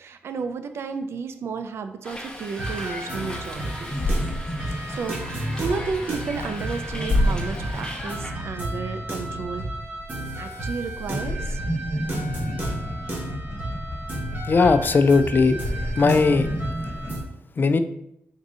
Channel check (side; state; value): both; normal; correlation 0.82